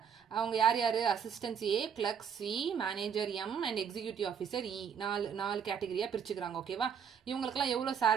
அவங்க யார் யாரு? Assistant A, clerk C, manager M and executive officer E. நாலு கேட்டகரியா பிரிச்சுக்கறாங்க. ஓகேவா? இவங்களுக்குலாம் எவ்வளவு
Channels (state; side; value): quieter; left; 7.4 dB